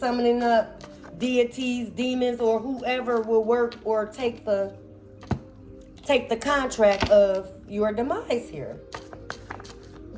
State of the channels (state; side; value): identical; both; correlation 1.00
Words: up deities, demons, or whoever will work or take the contract of your demise here.